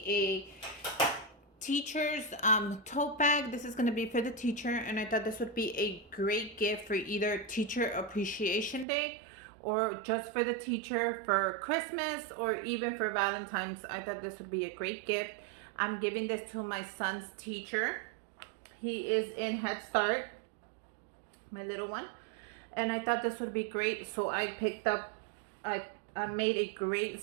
a teacher's tote bag. This is gonna be for the teacher, and I thought this would be a great gift for either Teacher Appreciation Day or just for the teacher for Christmas or even for Valentine's. I thought this would be a great gift. I'm giving this to my son's teacher. He is in Head Start, my little one, and I thought this would be great, so I picked up I made a great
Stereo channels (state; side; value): drops out; left; at 8.8 s